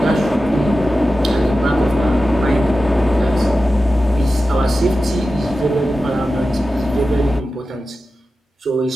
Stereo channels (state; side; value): normal; both; correlation 0.93